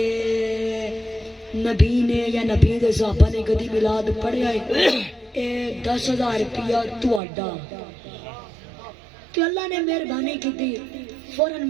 نبی نے یا نبی دے صحابہ نے کدی میلاد پڑھیا ہے اے 10,000 روپیہ تہاڈا تو اللہ نے مہربانی کی تھی فوراً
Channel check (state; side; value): drops out; left; at 7.2 s